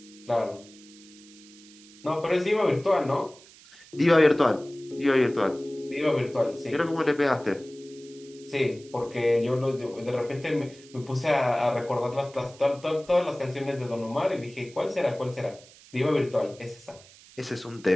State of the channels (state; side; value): noise; right; hiss, 23 dB below the sound